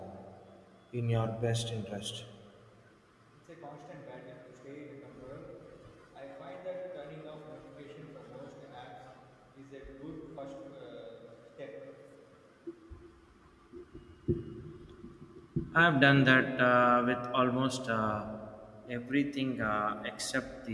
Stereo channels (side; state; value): both; identical; correlation 1.00